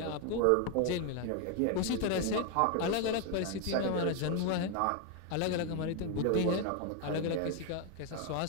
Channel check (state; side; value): different; both; correlation 0.01